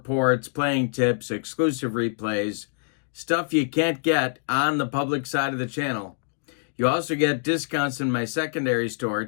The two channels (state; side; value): silent; right; digital silence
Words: playing tips, exclusive replays, stuff you can't get on the public side of the channel. You also get discounts in my secondary store,